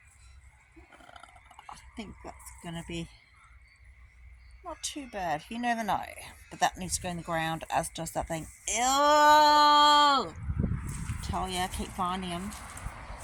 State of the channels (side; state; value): both; identical; correlation 1.00